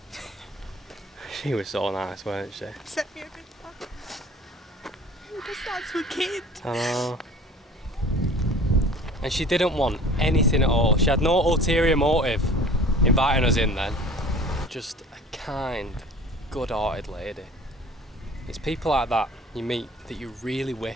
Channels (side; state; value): both; normal; correlation 0.45